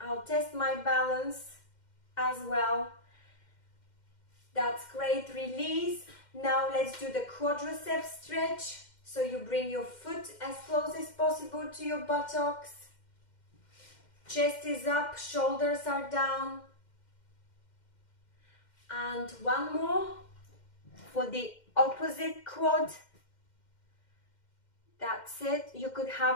test my balance as well. That's great. Release. Now let's do the quadriceps stretch. So you bring your foot as close as possible to your buttocks. Chest is up, shoulders are down. And one more for the opposite quad. That's it. You could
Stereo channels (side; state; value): right; late; 2.1 ms